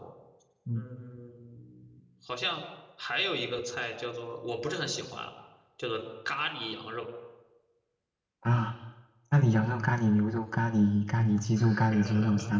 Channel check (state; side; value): identical; both; correlation 1.00